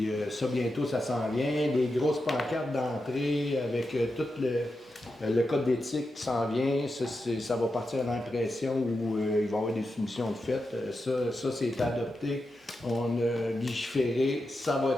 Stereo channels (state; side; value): normal; both; correlation 0.89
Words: ça, bientôt, ça s'en vient. Des grosses pancartes d'entrée avec tout le code d'éthique qui s'en vient. Ça va partir à l'impression où il va y avoir des soumissions de fait. Ça c'est adopté. On a légiféré. Ça